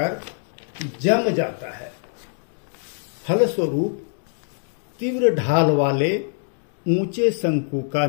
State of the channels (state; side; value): silent; right; digital silence